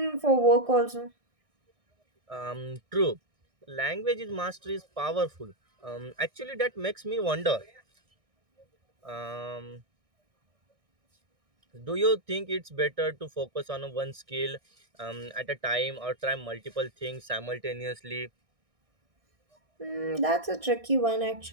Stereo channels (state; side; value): late; left; 1.6 ms